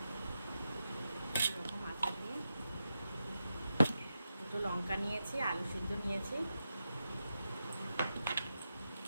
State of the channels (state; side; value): inverted; both; correlation -0.88